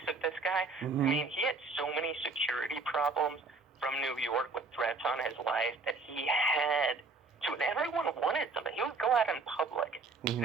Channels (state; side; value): quieter; left; 3.8 dB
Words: of this guy. I mean, he had so many security problems from New York with threats on his life that he had to, and everyone wanted something. He would go out in public,